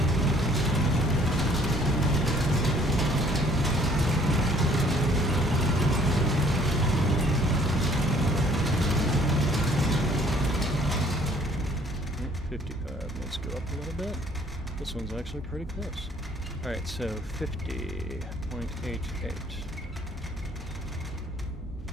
Let's go up a little bit. This one's actually pretty close. Alright, so 50.88.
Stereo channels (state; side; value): normal; both; correlation 0.59